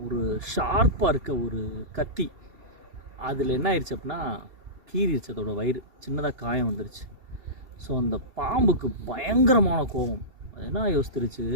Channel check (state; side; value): late; left; 2.7 ms